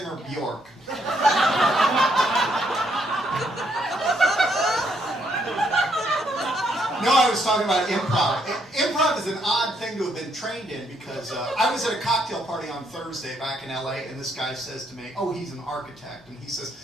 Bjork. No, I was talking about improv. Improv is an odd thing to have been trained in because I was at a cocktail party on Thursday back in LA, and this guy says to me, oh, he's an architect. And he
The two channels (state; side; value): normal; both; correlation 0.73